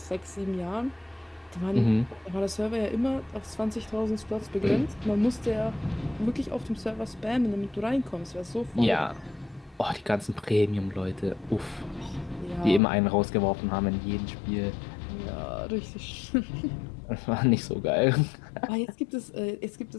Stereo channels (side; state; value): right; drops out; at 12.8 s